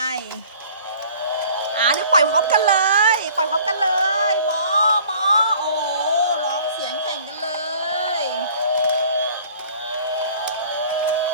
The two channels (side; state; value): both; inverted; correlation -0.51